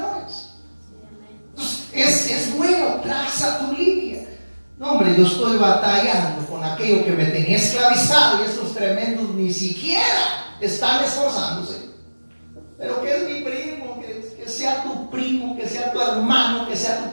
Entonces, es bueno, traza tu línea. No, hombre, yo estoy batallando con aquello que me tenía esclavizado y estos tremendos ni siquiera están esforzándose. Pero que es mi primo, que sea tu primo, que sea tu hermano, que sea tu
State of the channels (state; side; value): inverted; both; correlation -1.00